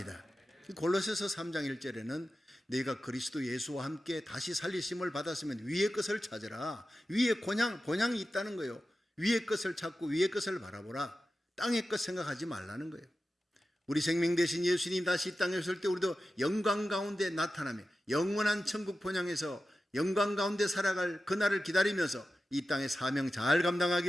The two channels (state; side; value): normal; both; correlation 0.93